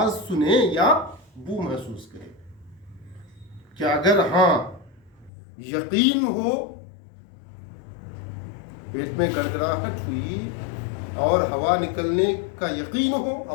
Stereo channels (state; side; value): drops out; right; at 5.3 s